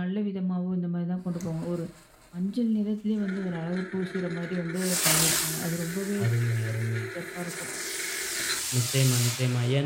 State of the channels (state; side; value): identical; both; correlation 1.00